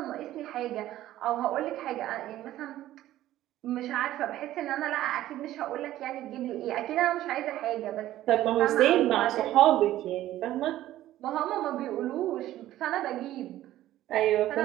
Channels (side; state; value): left; quieter; 14.0 dB